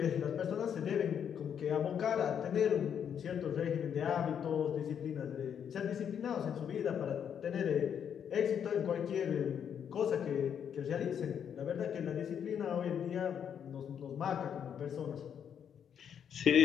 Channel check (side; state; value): right; quieter; 8.3 dB